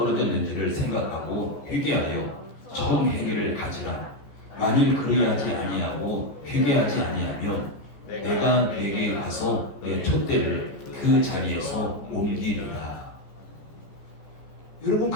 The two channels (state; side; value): late; right; 14 ms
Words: 생각하고 회개하여 처음 회개를 가지라. 만일 그리하지 아니하고 회개하지 아니하면 내가 네게 가서 내 촛대를 그 자리에서 옮기리라. 여러분,